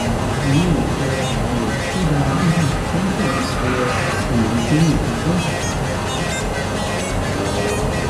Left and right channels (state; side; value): identical; both; correlation 1.00